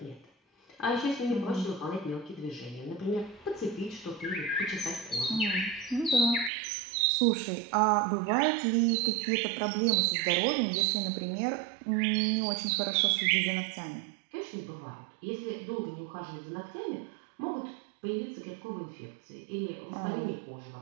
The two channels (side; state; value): left; drops out; at 6.5 s